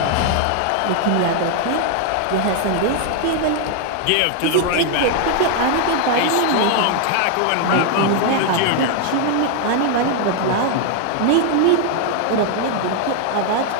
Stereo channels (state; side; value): different; both; correlation 0.00